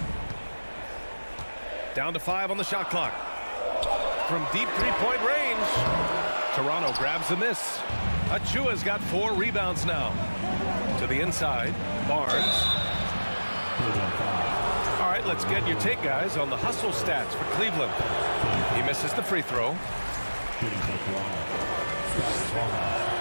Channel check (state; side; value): inverted; both; correlation -1.00